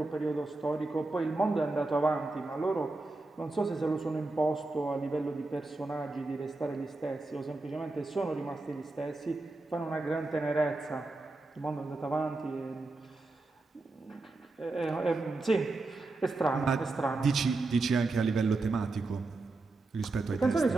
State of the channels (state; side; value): quieter; left; 3.3 dB